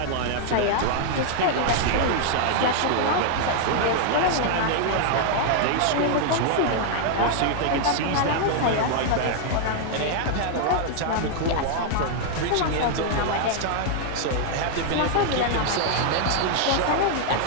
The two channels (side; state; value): both; different; correlation 0.00